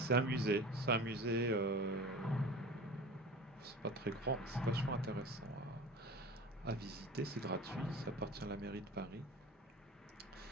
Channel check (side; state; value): both; normal; correlation 0.36